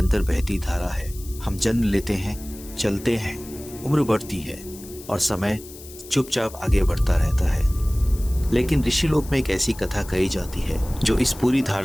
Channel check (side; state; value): left; noise; hiss, 17 dB below the sound